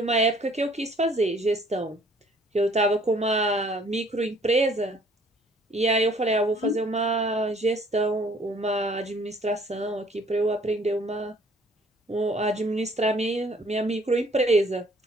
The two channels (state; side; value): normal; both; correlation 0.58